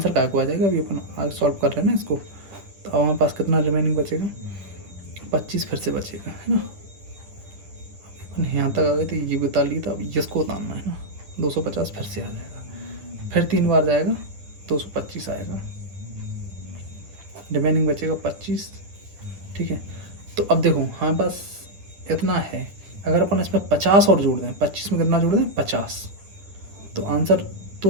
क्या को आ जाएगा, अभी अपन आगे सॉल्व कर रहे हैं ना इसको। तो अब हमारे पास कितना रिमेनिंग बचेगा, 25 फिर से बचेगा, है ना। अपन यहाँ तक आ गए तो ये बता ली, तो अब इसको उतारना है ना। 250 फिर से आ जाएगा, फिर 3 बार जाएगा, 225 आएगा, रिमेनिंग बचेगा 25, ठीक है। तो अब देखो हमारे पास इतना है। अगर अपन इसमें 50 और जोड़ दें, 25 में कितना जोड़ दें 50, तो आंसर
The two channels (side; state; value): left; late; 9.8 ms